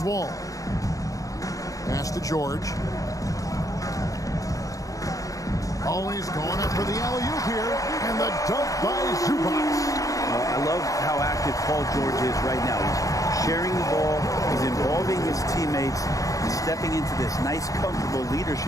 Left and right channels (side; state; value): right; late; 0.16 ms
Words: Wall. Pass to George. Always going up for the alley-oop here, and the dunk by Zubac. I love how active Paul George is right now. He's sharing the ball, he's involving his teammates, and stepping into this nice, comfortable